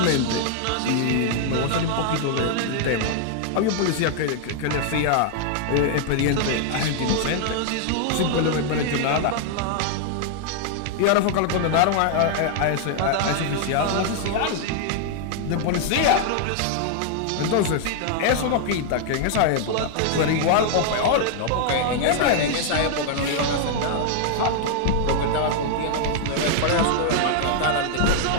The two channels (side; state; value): both; different; correlation 0.00